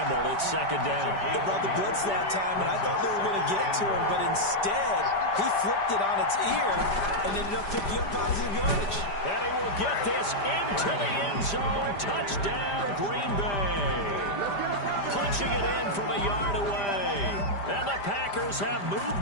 It's second down. They brought the blitz that time, and I thought they were going to get to him, but instead, he flipped it on its ear and ended up picking up positive yardage. And he will get this into the end zone. Touchdown, Green Bay. Punching it in from a yard away. And the Packers have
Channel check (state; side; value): late; right; 5.0 ms